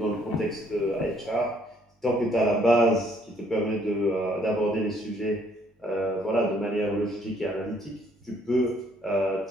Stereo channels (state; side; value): normal; both; correlation 0.65